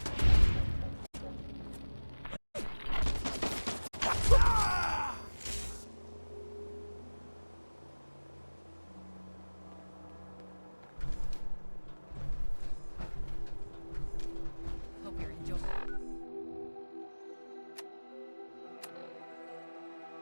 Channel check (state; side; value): inverted; both; correlation -1.00